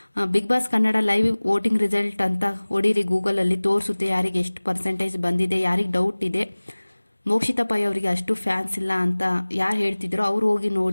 Bigg Boss Kannada live voting result ಅಂತ ಹೊಡೀರಿ, ಗೂಗಲಲ್ಲಿ ತೋರಿಸುತ್ತೆ ಯಾರಿಗೆ ಎಷ್ಟು ಪರ್ಸೆಂಟೇಜ್ ಬಂದಿದೆ. ಯಾರಿಗೆ ಡೌಟ್ ಇದೆ ಮೋಕ್ಷಿತಾ ಪೈ ಅವರಿಗೆ ಅಷ್ಟು ಫ್ಯಾನ್ಸ್ ಇಲ್ಲ ಅಂತ ಯಾರು ಹೇಳ್ತಿದ್ರು, ಅವ್ರು ಹೋಗಿ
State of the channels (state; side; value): inverted; both; correlation -1.00